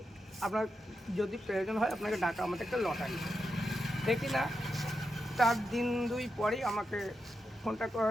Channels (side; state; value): both; normal; correlation 0.87